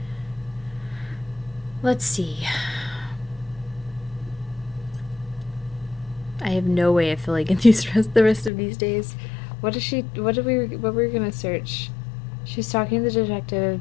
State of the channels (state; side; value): drops out; right; at 8.5 s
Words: Let's see. I have no way of filling in the rest of these days. What were we gonna search? She's talking to the detective